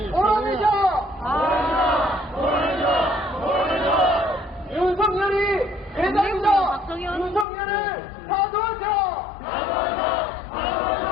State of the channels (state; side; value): drops out; right; at 7.5 s